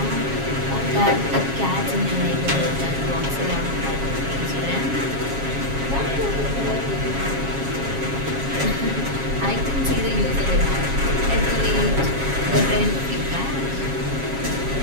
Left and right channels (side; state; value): left; late; 7.3 ms